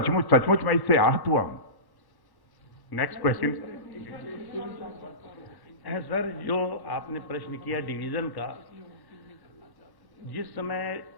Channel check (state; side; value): late; right; 1.1 ms